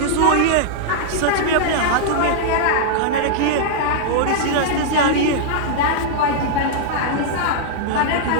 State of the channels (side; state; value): both; different; correlation -0.01